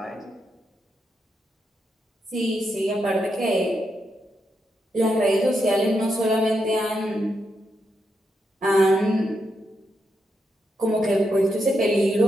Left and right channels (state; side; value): normal; both; correlation 0.83